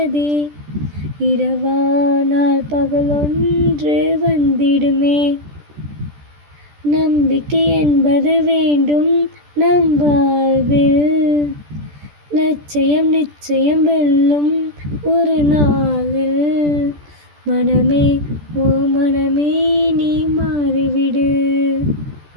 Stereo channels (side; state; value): left; late; 14 ms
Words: இரவானால் பகலொன்று வந்திடுமே. நம்பிக்கை என்பது வேண்டும் நம் வாழ்வில், லட்சியம் நிச்சயம் வெல்லும் ஒரு நாளில். மனமே ஓ மனமே நீ மாறிவிடு,